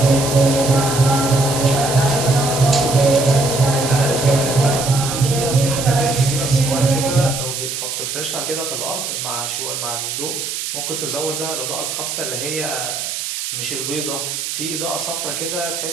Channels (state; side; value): noise; right; hiss, 4 dB below the sound